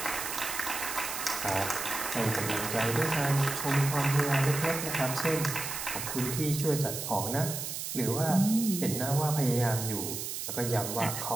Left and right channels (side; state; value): right; noise; hiss, 5 dB below the sound